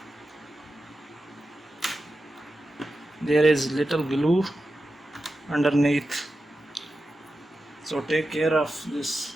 There is little glue underneath, so take care of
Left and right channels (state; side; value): normal; both; correlation 0.91